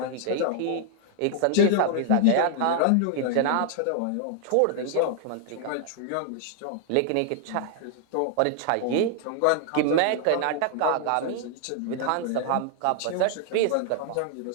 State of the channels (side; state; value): both; different; correlation 0.00